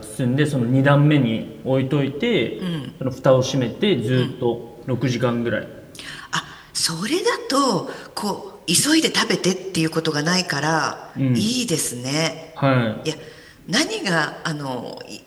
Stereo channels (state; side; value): identical; both; correlation 1.00